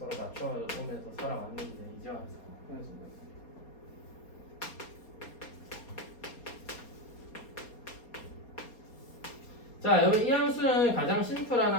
맞춰오면서 살아왔는데 이제 와서 헤어지고 있어요. 자 여러분 이 함수는 가장 심플한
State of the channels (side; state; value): right; late; 4.3 ms